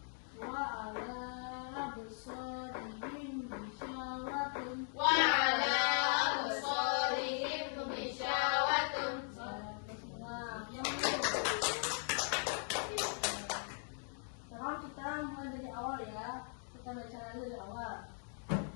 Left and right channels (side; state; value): right; silent; 52 dB below the other